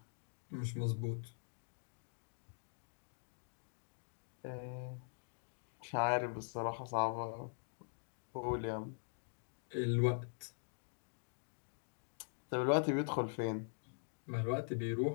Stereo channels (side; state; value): right; silent; digital silence